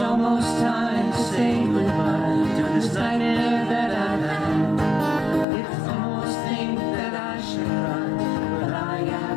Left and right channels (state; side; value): drops out; right; at 5.5 s